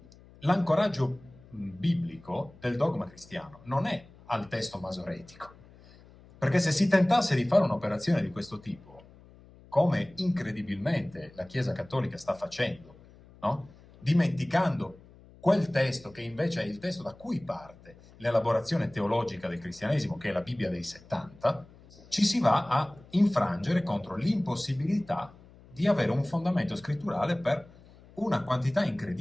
l'ancoraggio biblico del dogma cristiano non è al testo masoretico, perché se si tentasse di fare un'operazione di questo tipo, come incredibilmente la Chiesa Cattolica sta facendo, no? Dimenticando quel testo che invece è il testo da cui parte l'elaborazione teologica del cristianesimo, che è la Bibbia dei 70, ci si va a infrangere contro l'impossibilità di avere un fondamento scritturale per una quantità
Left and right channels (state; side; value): noise; left; hum, 24 dB below the sound